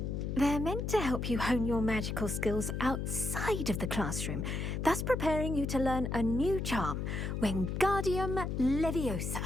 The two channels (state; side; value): noise; left; hum, 2 dB below the sound